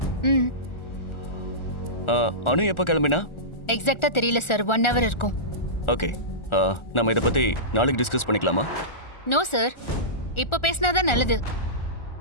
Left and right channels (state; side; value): late; right; 1.4 ms